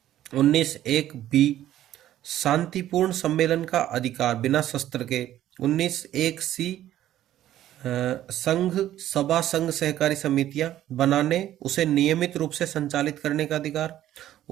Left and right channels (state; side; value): quieter; left; 12.8 dB